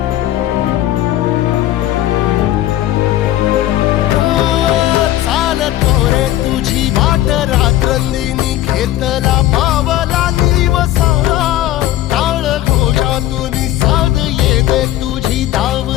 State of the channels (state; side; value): quieter; right; 13.9 dB